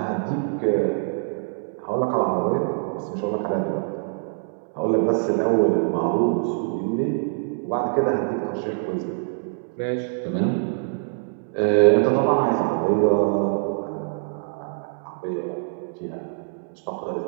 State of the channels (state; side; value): silent; left; 62 dB below the other